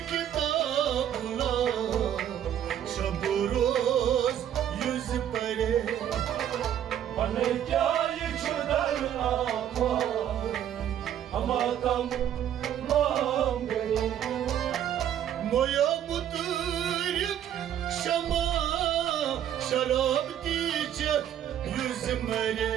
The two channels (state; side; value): quieter; left; 10.4 dB